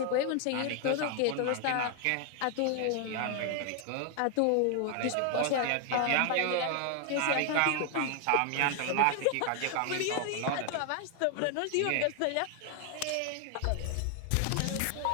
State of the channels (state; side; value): different; both; correlation 0.00